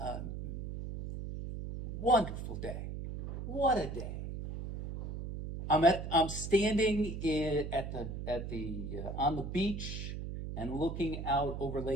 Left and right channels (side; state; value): right; noise; hum, 6 dB below the sound